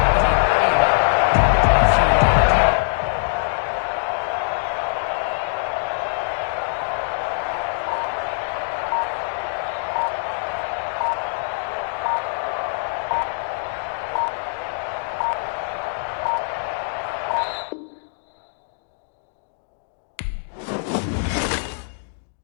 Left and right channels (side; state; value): right; silent; digital silence